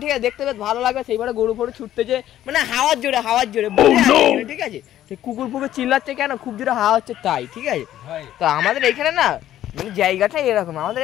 ঠিক আছে, দেখতে বেশ ভালো লাগবে। সেইবারে গরু ফরু ছুটতেছে, মানে হাওয়ার জোরে ঠিক আছে। সেই কুকুর ফুকুর চিল্লাচ্ছে কেন, খুব জোরে হাওয়া হচ্ছে তাই, ঠিক আছে। তো আমাদের এইখানে না মানে জায়গাটা এরকম, আমাদের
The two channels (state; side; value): quieter; right; 12.5 dB